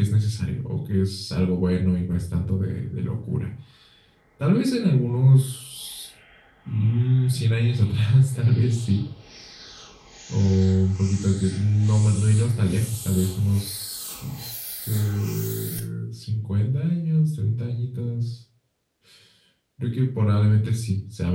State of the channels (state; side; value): identical; both; correlation 1.00